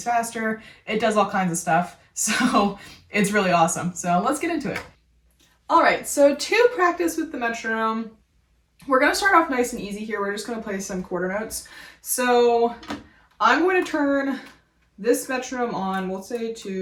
faster. It does all kinds of stuff, so it's really awesome. So let's get into it. All right, so to practice with the metronome, we're going to start off nice and easy here. We're just going to play some quarter notes. So I'm going to turn this metronome on, we'll say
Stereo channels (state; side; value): identical; both; correlation 1.00